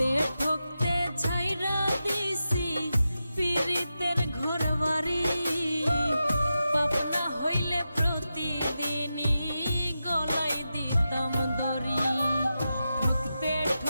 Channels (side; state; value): both; inverted; correlation -0.90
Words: ঠকতে ছাইরা দিছি পীড়িতের ঘরবাড়ি। পাপনা হইলে প্রতিদিনই গলায় দিতাম দড়ি, ঠকতে